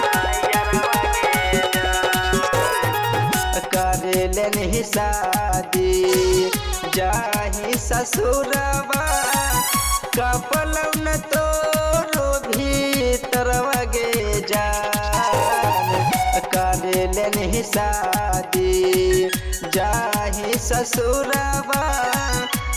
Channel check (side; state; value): both; identical; correlation 1.00